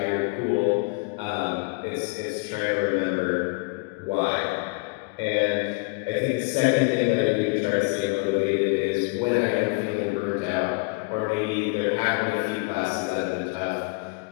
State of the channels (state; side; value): quieter; right; 29.4 dB